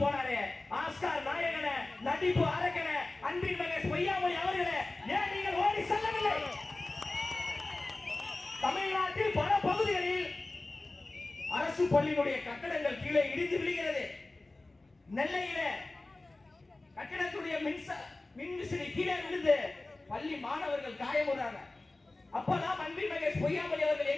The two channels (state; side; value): quieter; right; 3.0 dB